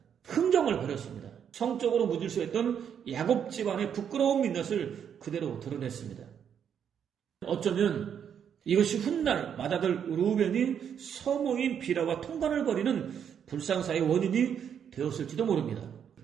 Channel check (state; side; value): quieter; left; 8.3 dB